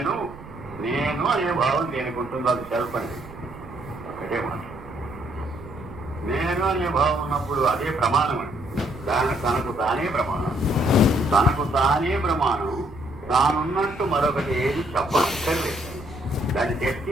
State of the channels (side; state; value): right; noise; rumble, 17 dB below the sound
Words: నేను అనే భావం దేనికి ఉంటుందో అది సెల్ఫ్ అనేది ఒకటే మాట. నేను అనే భావం ఉన్నప్పుడు అదే ప్రమాణం అండి. తనకు తానే ప్రమాణం, తనకు తానే ప్రమాణం. తానున్నట్టు మరొకటి ఏది చెప్పక్కర్లేదు, దాన్ని